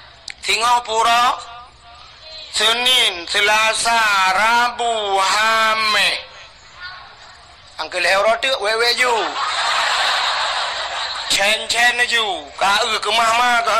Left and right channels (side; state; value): both; identical; correlation 1.00